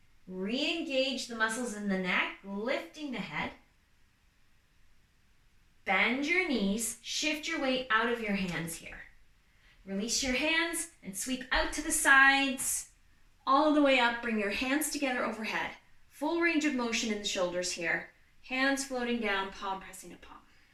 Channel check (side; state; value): both; identical; correlation 1.00